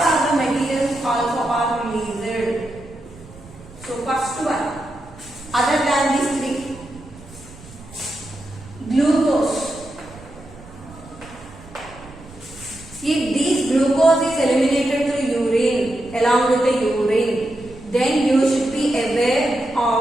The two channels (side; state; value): right; noise; rumble, 20 dB below the sound